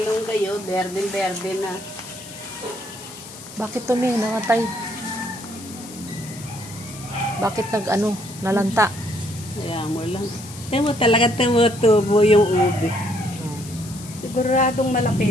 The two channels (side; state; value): left; noise; hiss, 16 dB below the sound